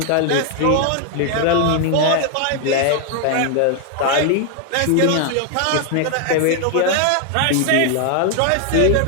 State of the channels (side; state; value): both; different; correlation 0.00